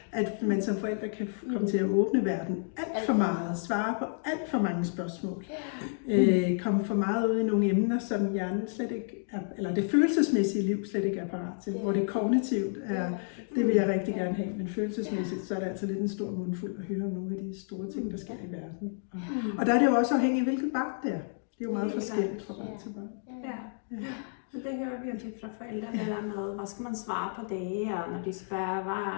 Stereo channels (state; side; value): silent; right; digital silence